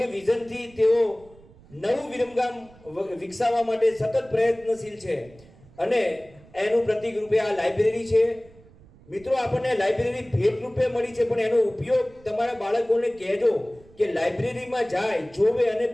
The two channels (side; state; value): right; noise; rumble, 25 dB below the sound